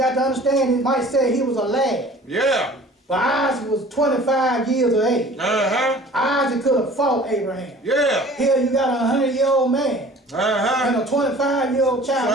to understand, it might say he was a lad, Yeah. but Isaac was 25 years of age. Uh-huh. Isaac could have fought Abraham. Yeah. Here you got a 100-year-old man Uh-huh. and a 25-year-old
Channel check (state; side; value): normal; both; correlation 0.47